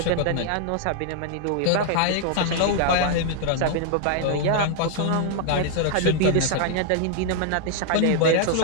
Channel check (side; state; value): both; different; correlation 0.00